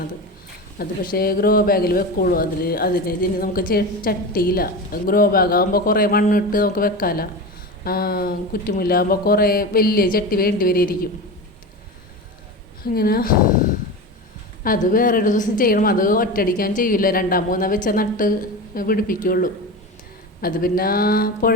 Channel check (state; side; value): normal; both; correlation 0.25